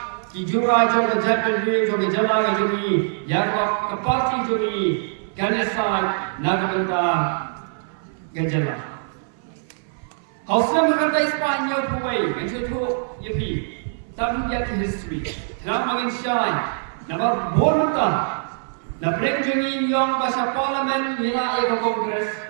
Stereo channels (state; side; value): silent; left; 59 dB below the other